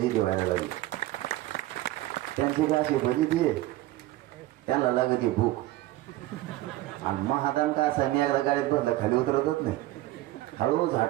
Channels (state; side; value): quieter; left; 16.4 dB